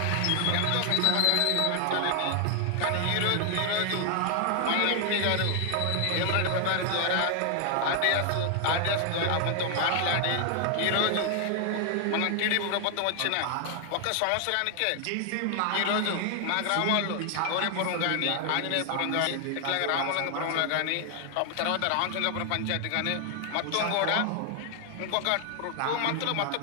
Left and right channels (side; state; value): both; different; correlation 0.00